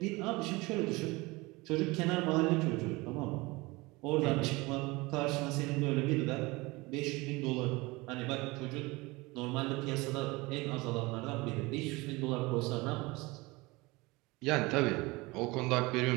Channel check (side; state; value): left; quieter; 23.2 dB